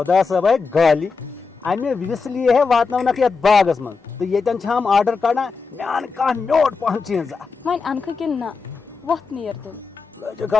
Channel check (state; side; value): quieter; right; 4.8 dB